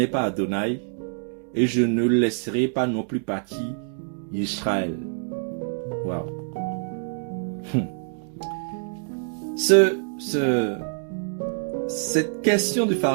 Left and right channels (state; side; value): silent; left; digital silence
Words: pas Adonai et je ne laisserai pas non plus partir Israël. Waouh. Cette question du